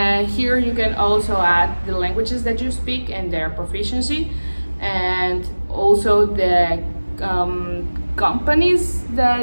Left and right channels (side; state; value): both; inverted; correlation -1.00